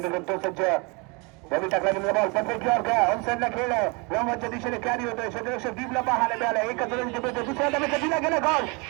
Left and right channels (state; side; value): quieter; left; 29.6 dB